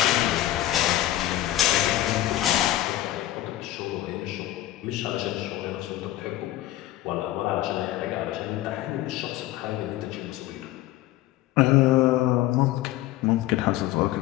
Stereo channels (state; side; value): quieter; right; 15.0 dB